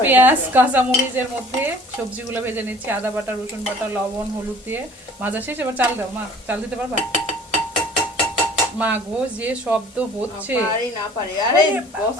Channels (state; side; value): normal; both; correlation 0.51